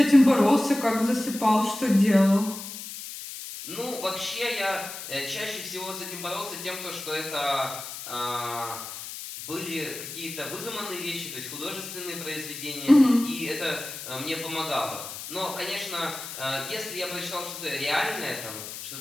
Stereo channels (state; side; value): noise; left; hiss, 10 dB below the sound